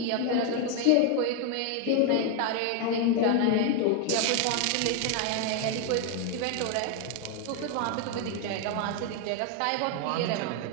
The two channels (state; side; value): different; both; correlation 0.00